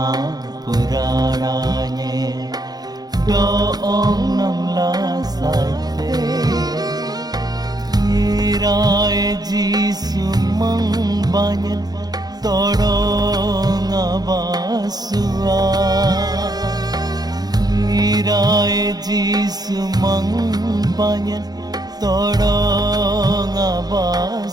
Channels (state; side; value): late; left; 0.19 ms